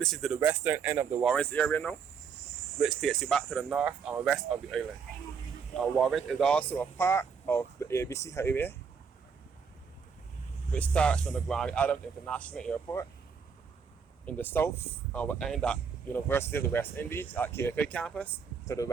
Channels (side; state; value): left; quieter; 6.2 dB